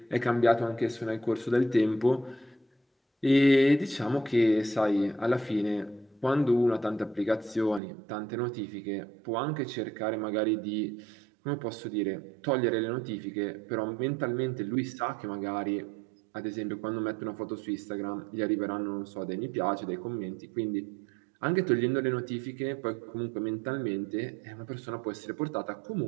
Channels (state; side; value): drops out; left; at 7.8 s